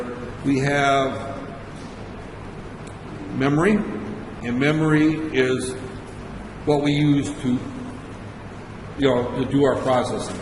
We have memory, and memory is what we use to, to do our processing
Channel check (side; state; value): both; identical; correlation 1.00